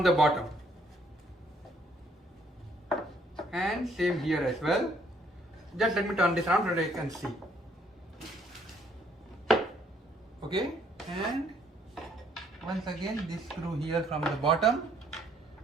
the bottom. And same here as well. Just let me turn this around so that you can see. Okay, and once again this screw here from the bottom.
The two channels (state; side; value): normal; both; correlation 0.66